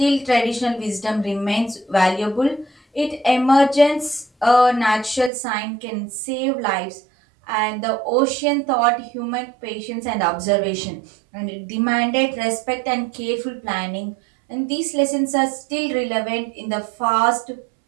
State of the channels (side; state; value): left; drops out; at 5.3 s